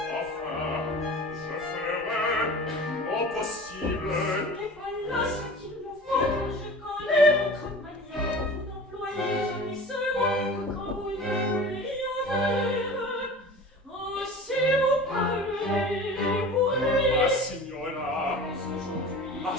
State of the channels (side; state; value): both; normal; correlation 0.38